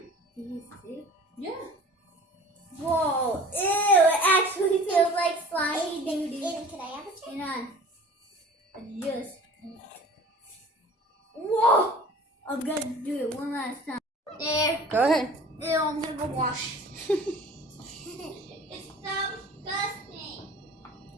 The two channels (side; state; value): both; normal; correlation 0.44